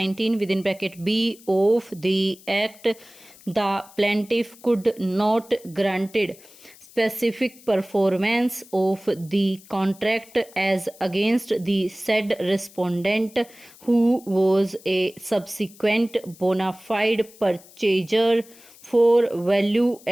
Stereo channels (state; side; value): noise; left; hiss, 23 dB below the sound